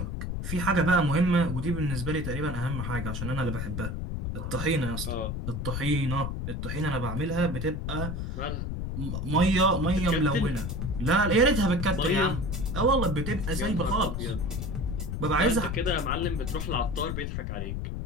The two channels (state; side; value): noise; left; rumble, 3 dB below the sound